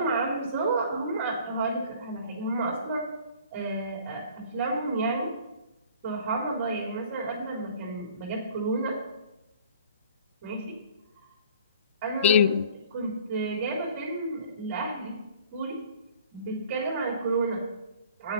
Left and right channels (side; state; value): both; inverted; correlation -0.50